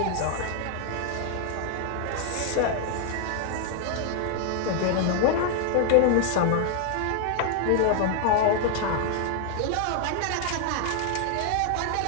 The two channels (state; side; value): different; both; correlation 0.00